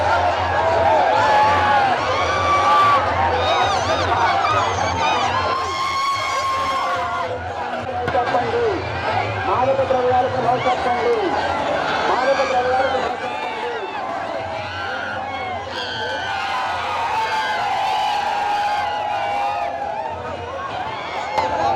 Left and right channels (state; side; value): identical; both; correlation 1.00